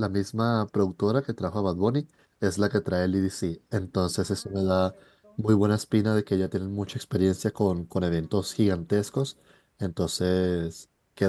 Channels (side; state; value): both; identical; correlation 1.00